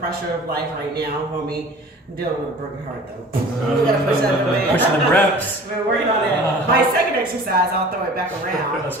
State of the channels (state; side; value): normal; both; correlation 0.44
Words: of life right now, homie. I'm dealing with a broken heart though. We gotta push that away. Pushing the reps. We're working on that. My second exercise, I'll throw it back around. Let's